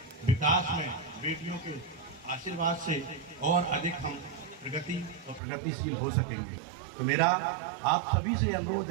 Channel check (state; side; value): drops out; left; at 5.4 s